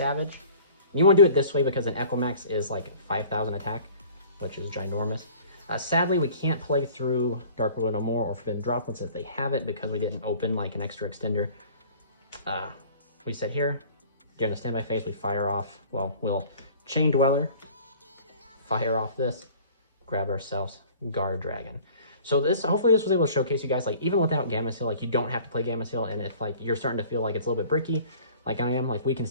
And you want to do it this way because an Equimax is like 5,000 attack, which is ginormous. Sadly, we can't play through Dark World No More or Forbidden Droplets if they have it because we didn't open like an extra extender. We sit here, during the standby phase, we fire off, well, we'll Chain Dweller, fire off this, grab ourselves Guard Dragon. So hopefully this was able to showcase you guys, like, even without Gamma Seal, like, you don't have to play Gamma Seal, and if, like, you're starting to feel like it's a little bit bricky, like I am, like, we can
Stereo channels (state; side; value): inverted; both; correlation -0.48